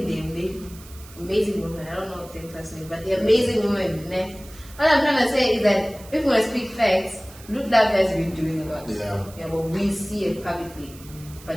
them. They amazing women. I don't know them personally, but they're amazing women. Ne? What I'm trying to say is that if we want to speak facts, Look Love has been doing a lot. Yeah. But we see it publicly.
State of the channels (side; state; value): right; noise; hiss, 20 dB below the sound